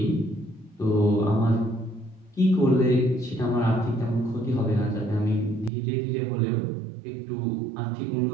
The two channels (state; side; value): drops out; left; at 5.7 s